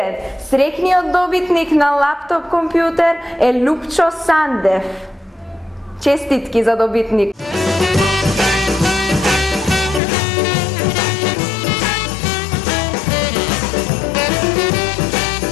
Срекниот добитник на лаптоп компјутер е Лупчо Сандев. Честитки за добитник.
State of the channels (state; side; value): drops out; right; at 10.0 s